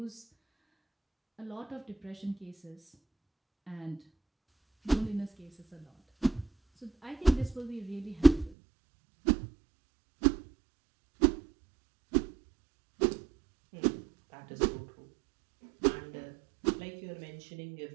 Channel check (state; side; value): drops out; left; at 8.6 s